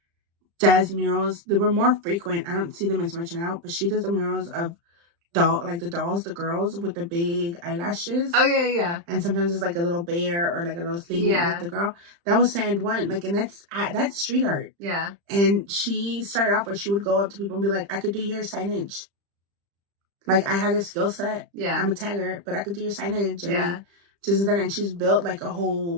does murals. They were more frequent. I don't see them as much now, but she does the murals of the girls with the big eyelashes. Oh yeah. And sometimes it's like a little bear or like a little thing with the girl. That was Sand One. Like, and that's street art. Yeah. And she started off where she would go up to people and be like, I could do your signage. Like I had a skill set. Yeah. I'm a tagger, but I could do your signage. And like, just that, and she's built like a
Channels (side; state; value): left; late; 35 ms